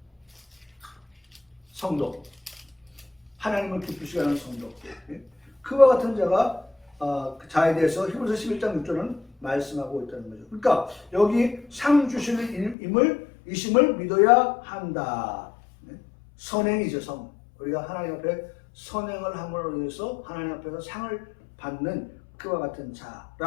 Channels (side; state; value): right; drops out; at 12.8 s